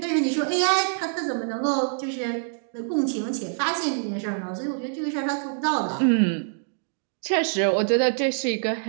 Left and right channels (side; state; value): left; silent; digital silence